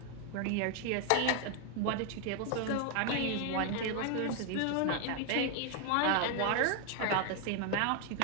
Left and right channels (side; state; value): both; different; correlation 0.00